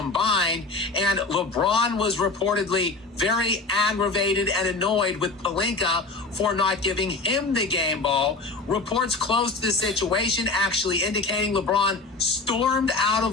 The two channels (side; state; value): right; quieter; 3.6 dB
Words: and LeBron was reportedly very aggravated and annoyed with Pelinka for not giving him the game ball. Reports close to the situation actually indicating LeBron stormed out